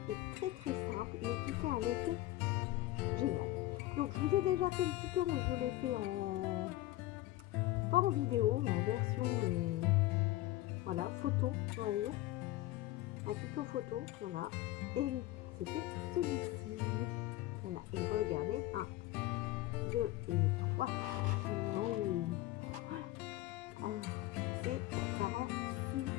et très simple, mais qui fait un effet génial. Donc, je vous ai déjà fait le tuto, mais je l'ai fait pas en vidéo, en version voilà, photo, on va dire. Un tuto photo, voilà. Et c'était celui-ci. Voilà, et regardez, 1, 2 et 3. Oh. Alors, ça rend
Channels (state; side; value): quieter; right; 16.6 dB